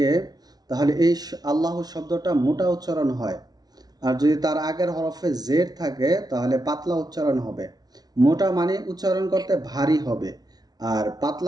তাহলে এই আল্লাহু শব্দটা মোটা উচ্চারণ হয়, আর যদি তার আগের হরফে জেড থাকে তাহলে পাতলা উচ্চারণ হবে। মোটা মানে উচ্চারণ করতে ভারী হবে, আর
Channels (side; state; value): left; late; 0.19 ms